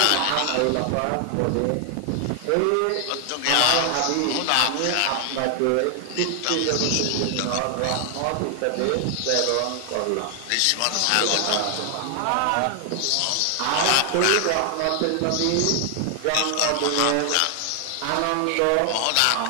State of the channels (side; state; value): both; different; correlation 0.00